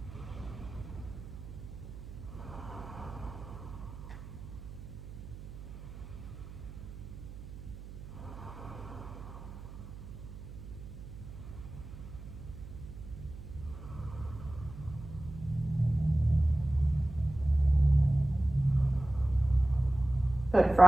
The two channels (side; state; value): right; noise; hum, 13 dB below the sound